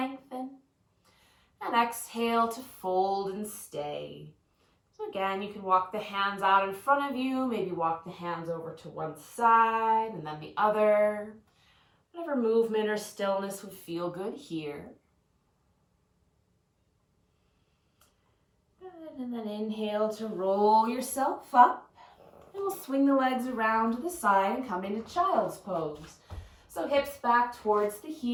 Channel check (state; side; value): identical; both; correlation 1.00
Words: And exhale to fold and stay. So again, you can walk the hands out in front of you, maybe walk the hands over to one side and then the other. Whatever movement or stillness would feel good here. Good, and then inhale to roll yourself up. And we'll swing the legs around to the side and come into child's pose. So hips back towards the